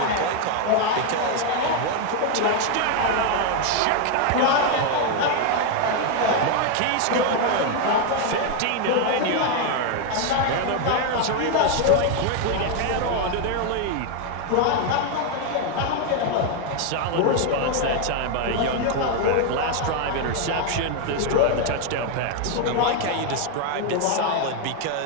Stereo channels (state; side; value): different; both; correlation 0.01